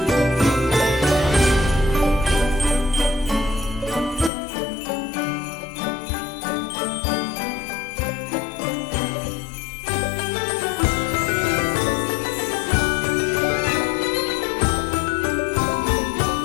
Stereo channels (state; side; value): drops out; right; at 4.3 s